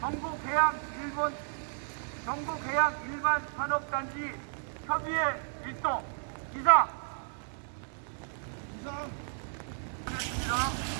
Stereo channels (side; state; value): left; silent; 56 dB below the other